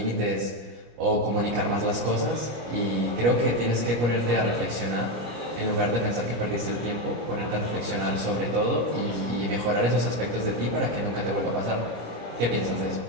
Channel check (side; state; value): left; late; 25 ms